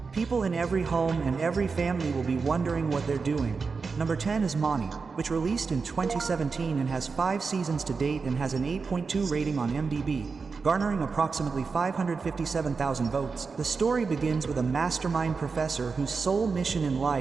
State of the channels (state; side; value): quieter; left; 4.8 dB